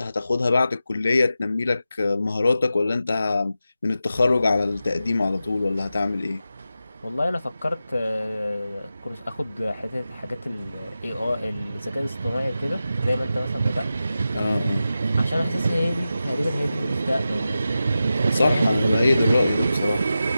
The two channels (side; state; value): both; inverted; correlation -0.92